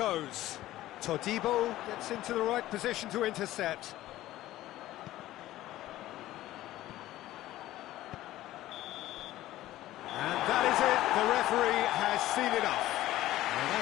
Todibo gets into the right position to intercept. And that is it, the referee has seen enough. Well,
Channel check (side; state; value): right; quieter; 15.2 dB